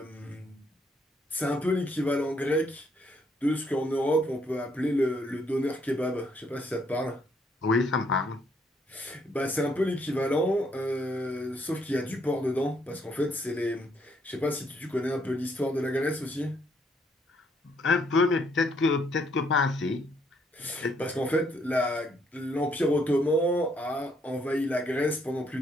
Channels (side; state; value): both; normal; correlation 0.71